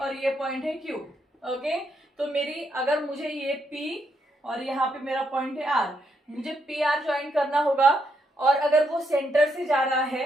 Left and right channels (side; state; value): both; normal; correlation 0.77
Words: ये पॉइंट है Q. ओके तो मेरी अगर मुझे ये P और यहाँ पे मेरा पॉइंट है R, मुझे PR ज्वाइन करना होगा और अगर वो सेंटर से जा रहा